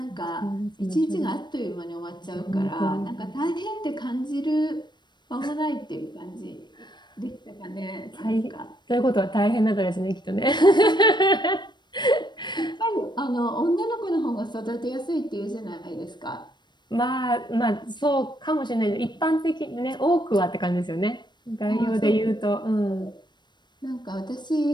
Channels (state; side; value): late; right; 0.22 ms